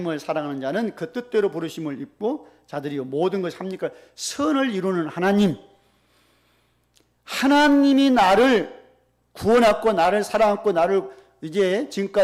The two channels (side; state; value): both; identical; correlation 1.00